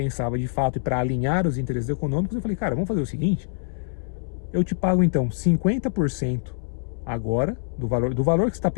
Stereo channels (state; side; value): silent; right; 62 dB below the other